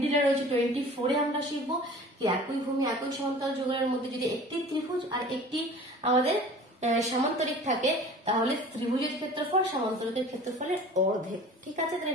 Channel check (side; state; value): both; normal; correlation 0.43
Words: রয়েছে 24 এ আমরা শিখবো কি একই ভূমি একই সমান্তরাল যুগলের মধ্যে যদি একটি ত্রিভুজ আর একটি আমাদের সামান্তরিক থাকে তাহলে ত্রিভুজের ক্ষেত্রফল সামান্তরিকের ক্ষেত্রফলের অর্ধেক। ঠিক আছে,